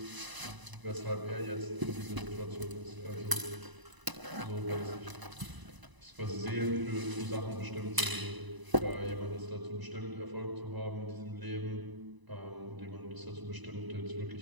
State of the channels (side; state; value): left; late; 1.0 ms